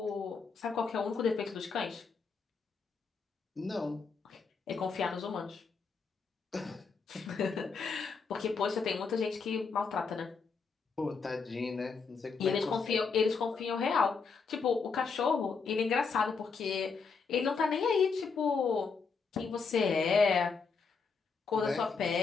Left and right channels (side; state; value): right; quieter; 5.1 dB